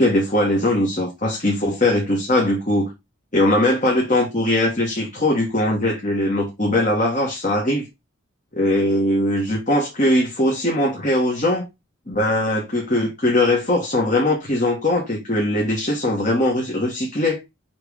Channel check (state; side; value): normal; both; correlation 0.42